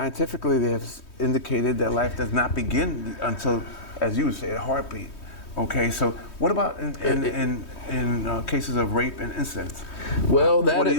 they have indicated that life does not begin until, as you say, a heartbeat. Okay, so what about in cases of rape and incest? Well, What do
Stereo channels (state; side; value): late; right; 3.2 ms